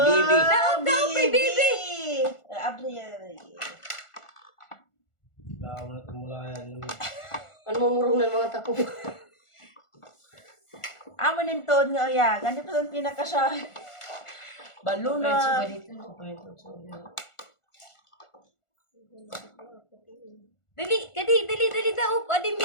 Daog daw kay Bibi! Abri. Baka mo na tumulayan. Ano mamurong ng mga tako? Amo ninton nga oya. Ganito pa ang pinakasya. Baluna. Dali daog! Adi,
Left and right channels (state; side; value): late; right; 1.4 ms